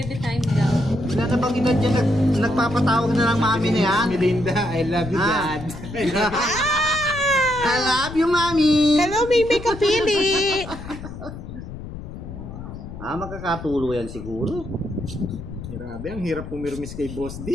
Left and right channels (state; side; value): noise; left; rumble, 11 dB below the sound